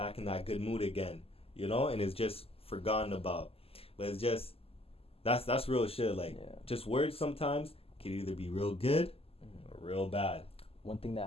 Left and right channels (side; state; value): right; late; 0.28 ms